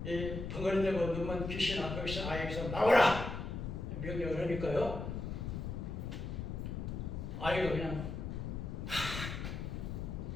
이 벙어리되고 눈만 귀신 안고 있는 아이에게서 나오라! 명령을 하니까요. 아이가 그냥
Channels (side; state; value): left; noise; rumble, 5 dB below the sound